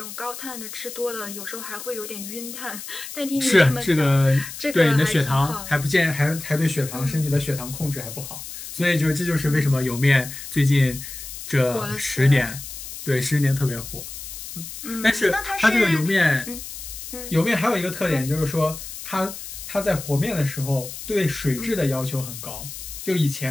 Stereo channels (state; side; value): noise; left; hiss, 11 dB below the sound